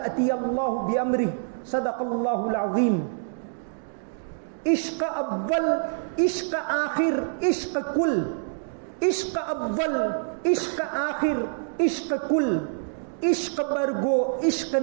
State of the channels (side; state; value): left; silent; digital silence